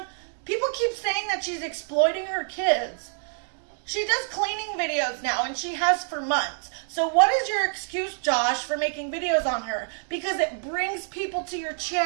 People keep saying that she's exploiting her kids. She does cleaning videos now, and she has for months. So what is your excuse, Josh, for making videos on her? Because it brings people to your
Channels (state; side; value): silent; left; digital silence